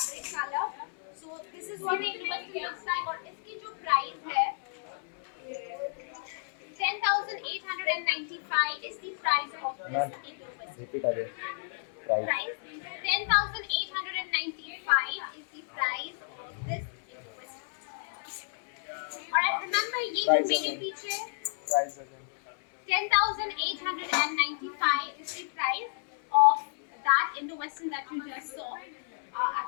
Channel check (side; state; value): right; silent; 57 dB below the other